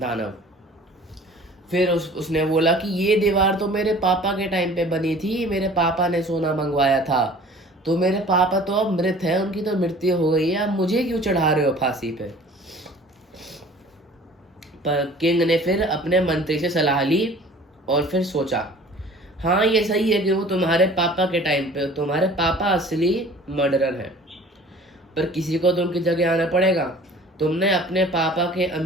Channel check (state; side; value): normal; both; correlation 0.47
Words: फिर उसने बोला कि ये दीवार तो मेरे पापा के टाइम पे बनी थी, मेरे पापा ने सोना मंगवाया था, तो मेरे पापा तो अब मृत है, उनकी तो मृत्यु हो गई है, अब मुझे क्यों चढ़ा रहे हो फांसी पे। पर किंग ने फिर अपने मंत्री से सलाह ली और फिर सोचा, हाँ ये सही है कि वो तुम्हारे पापा के टाइम पे, तुम्हारे पापा असली मर्डरर है, पर किसी को तो उनकी जगह आना पड़ेगा। तुमने अपने पापा के